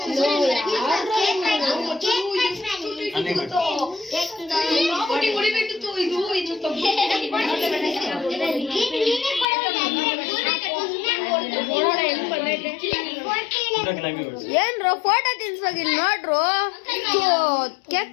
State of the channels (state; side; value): drops out; right; at 9.5 s